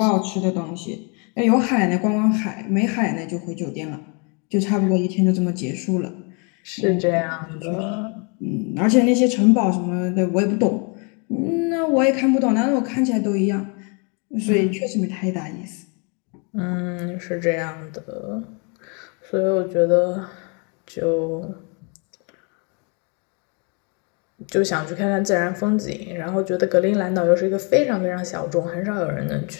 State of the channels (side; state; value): right; quieter; 34.9 dB